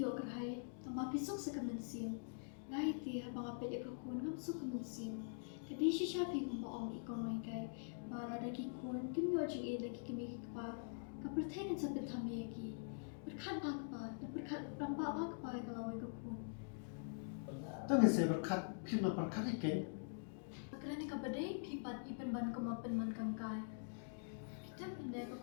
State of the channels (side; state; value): right; silent; digital silence